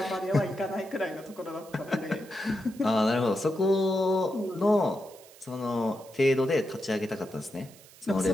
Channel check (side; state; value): right; noise; hiss, 22 dB below the sound